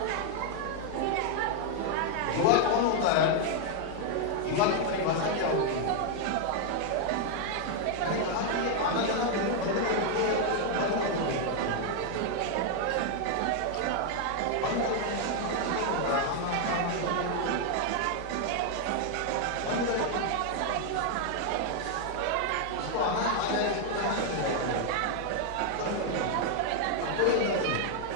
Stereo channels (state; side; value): different; both; correlation 0.00